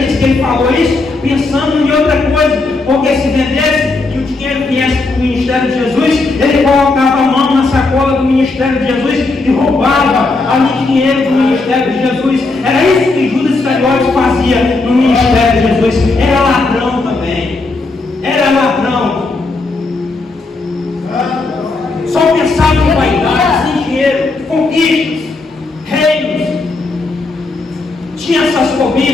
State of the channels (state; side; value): quieter; right; 3.5 dB